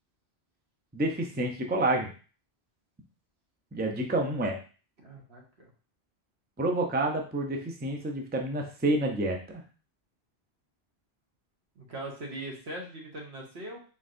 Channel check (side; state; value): both; normal; correlation 0.19